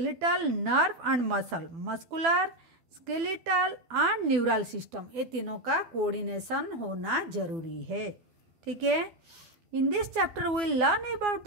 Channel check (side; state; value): left; late; 12 ms